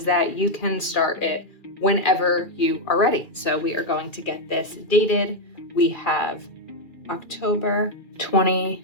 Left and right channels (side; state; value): right; late; 2.4 ms